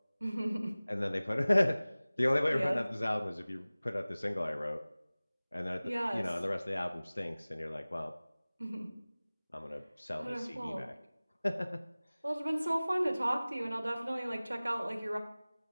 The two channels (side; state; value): both; inverted; correlation -0.99